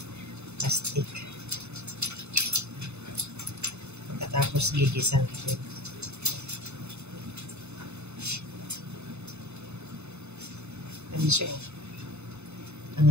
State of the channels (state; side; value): late; left; 0.81 ms